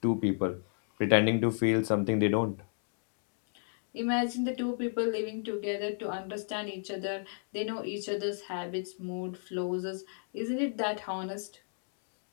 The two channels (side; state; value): right; silent; digital silence